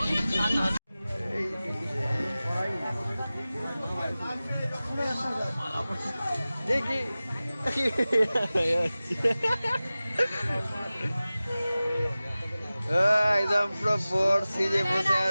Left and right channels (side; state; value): both; inverted; correlation -0.97